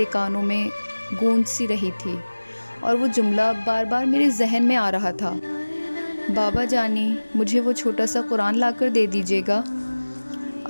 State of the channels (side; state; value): both; inverted; correlation -1.00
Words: کانوں میں گونج سی رہی تھی اور وہ جملہ بار بار میرے ذہن میں آ رہا تھا، بابا جانی، مجھے وہ چھوٹا سا قرآن لا کر دے دیجیے گا۔